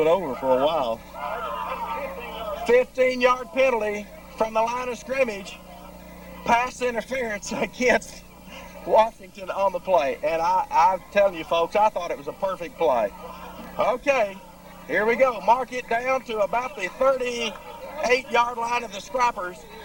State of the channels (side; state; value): both; identical; correlation 1.00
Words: over for a while. 15-yard penalty from the line of scrimmage. Pass interference against Washington on the play. And I'm telling you, folks, I thought it was a perfect play. Okay, here we go. Mark it down to about the 38-yard line of the Scrappers.